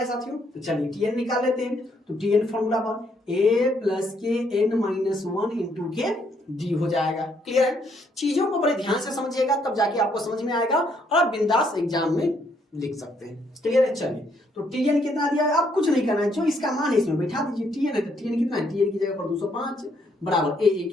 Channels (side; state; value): both; normal; correlation 0.71